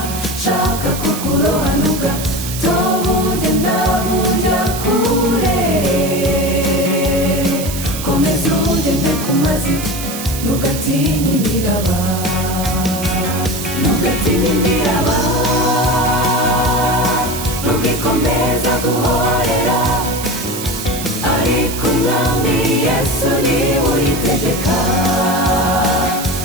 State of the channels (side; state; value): right; noise; hiss, 8 dB below the sound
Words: shaka kukurohanuka tobugenda buja kure komeza ugende ku mazi ntugatinya imiraba ntugatinya imiraba nubwo ikomeza guhorera ariko umwami Yesu niwe uyitegeka